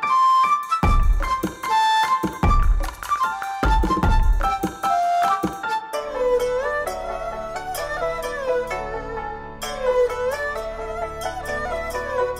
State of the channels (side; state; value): both; identical; correlation 1.00